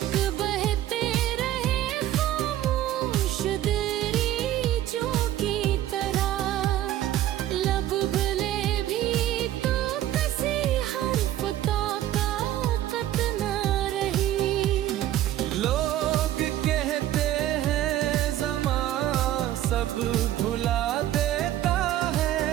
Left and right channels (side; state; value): left; quieter; 13.1 dB